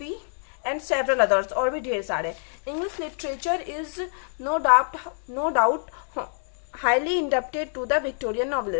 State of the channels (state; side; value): silent; right; digital silence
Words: and several others, और भी ढेर सारे। English literature is no doubt highly indebted to the Victorian